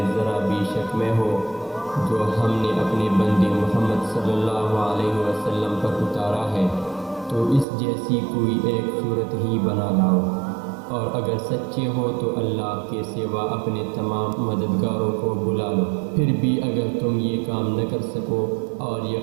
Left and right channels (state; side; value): drops out; left; at 7.7 s